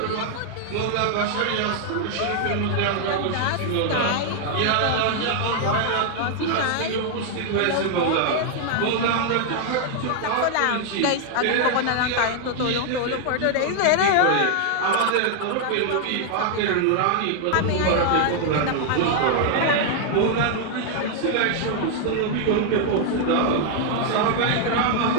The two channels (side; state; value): both; different; correlation 0.00